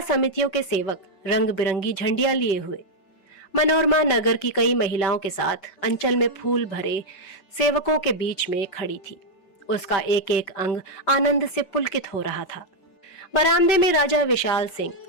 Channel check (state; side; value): late; right; 5.2 ms